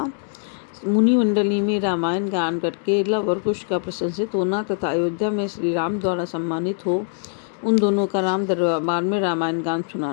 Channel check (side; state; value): right; silent; digital silence